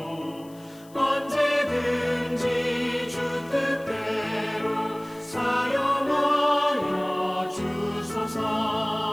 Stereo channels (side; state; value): left; noise; hiss, 25 dB below the sound